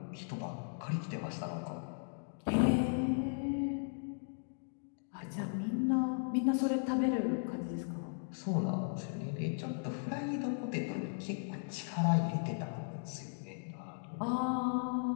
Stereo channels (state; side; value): silent; right; digital silence